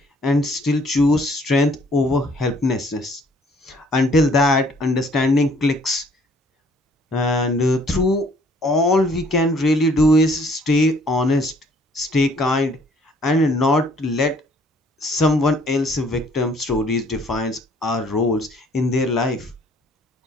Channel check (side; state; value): both; normal; correlation 0.60